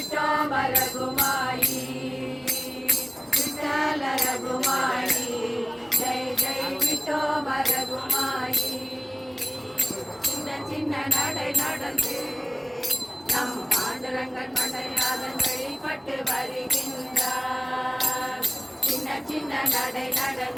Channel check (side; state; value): both; identical; correlation 1.00